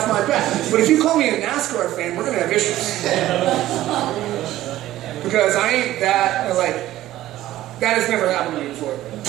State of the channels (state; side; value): quieter; left; 14.6 dB